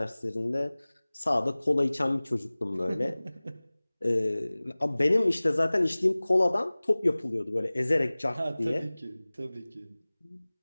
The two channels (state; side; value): inverted; both; correlation -1.00